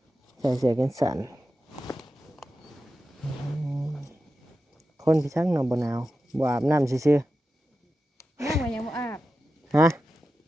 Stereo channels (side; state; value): both; normal; correlation 0.92